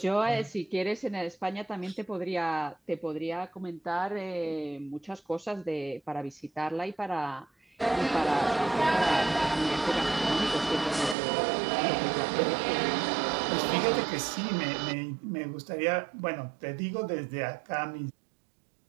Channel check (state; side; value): drops out; left; at 11.2 s